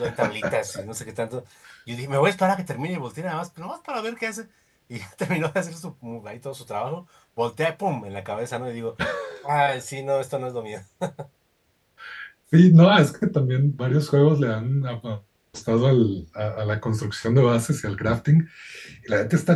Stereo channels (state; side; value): identical; both; correlation 1.00